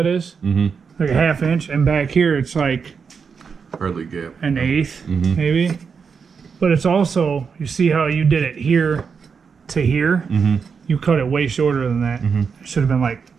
is? Mm-hmm. Like a 1/2 inch. And back here, it's like Hardly gap. an 1/8, Mhm. maybe. But it's also, you see how you did it here to here? Mm-hmm. You cut it way shorter than that. Mhm. It should have been like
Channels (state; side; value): quieter; left; 5.9 dB